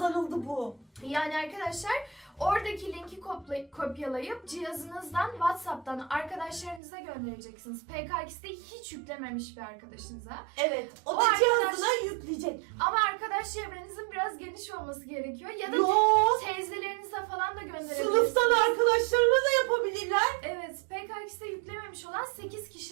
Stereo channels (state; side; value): drops out; left; at 6.8 s